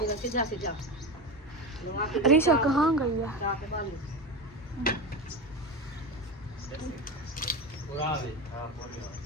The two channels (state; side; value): normal; both; correlation 0.22